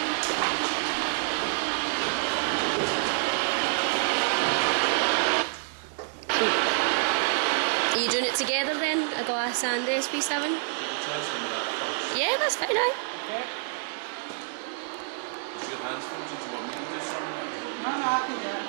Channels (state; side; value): silent; left; digital silence